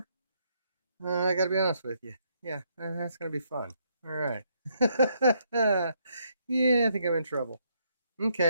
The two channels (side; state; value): both; inverted; correlation -0.73